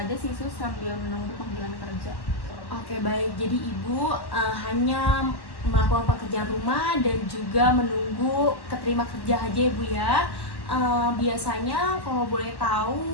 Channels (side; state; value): right; late; 1.1 ms